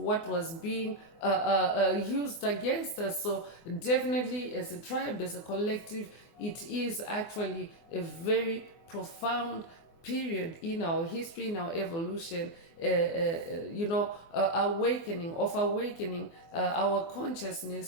was being used against us. So, definitely, as a tribe, as a collective, it is actually a very profound period in our history, in our evolution, awakening our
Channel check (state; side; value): late; right; 24 ms